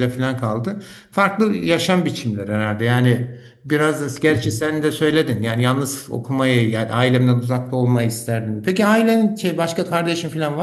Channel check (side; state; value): both; identical; correlation 1.00